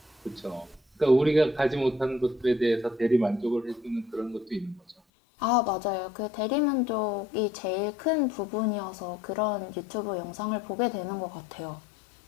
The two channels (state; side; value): drops out; right; at 5.0 s